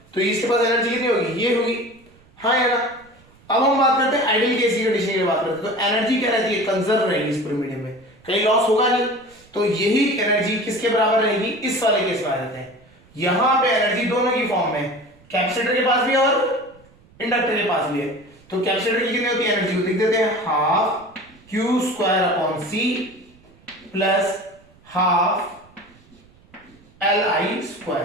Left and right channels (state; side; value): noise; right; rumble, 28 dB below the sound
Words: तो इसके पास एनर्जी कितनी होगी, ये होगी, हाँ है ना। अब हम बात करते हैं आइडियल केस की कंडीशन की बात करते हैं, तो एनर्जी क्या रहती है, कंजर्व रहेगी इस पूरे मीडियम में, कहीं लॉस होगा नहीं। तो यही एनर्जी किसके बराबर रहेगी, इस वाले केस में आ जाते हैं, यहां पे एनर्जी दोनों की फॉर्म में, कैपेसिटर के पास भी है और इंडक्टर के पास भी है। तो कैपेसिटर की कितनी होती है एनर्जी, लिख देते हैं half q square upon c plus half l i